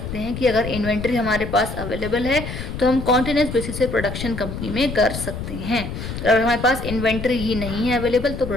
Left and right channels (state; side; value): noise; left; rumble, 7 dB below the sound